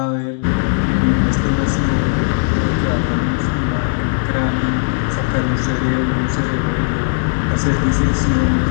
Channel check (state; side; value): silent; right; 68 dB below the other